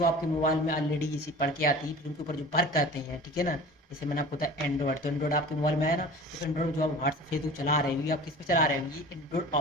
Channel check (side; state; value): both; normal; correlation 0.40